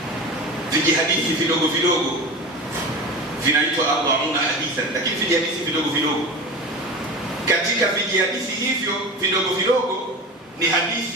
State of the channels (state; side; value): normal; both; correlation 0.30